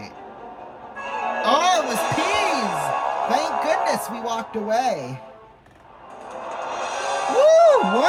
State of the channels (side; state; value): both; identical; correlation 1.00